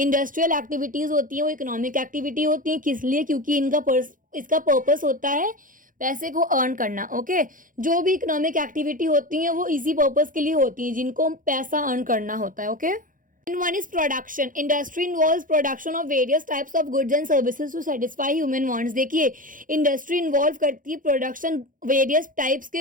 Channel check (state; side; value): late; left; 0.39 ms